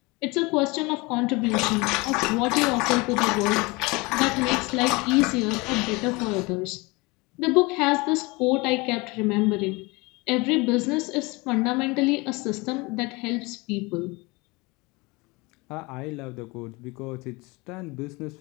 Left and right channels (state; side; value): quieter; right; 25.2 dB